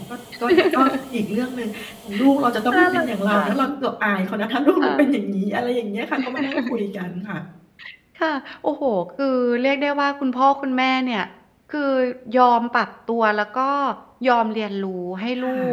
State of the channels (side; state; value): both; identical; correlation 1.00